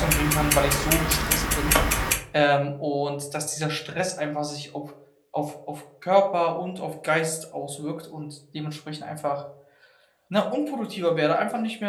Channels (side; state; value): both; identical; correlation 1.00